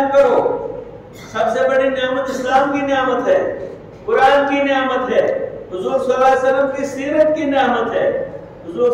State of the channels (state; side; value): identical; both; correlation 1.00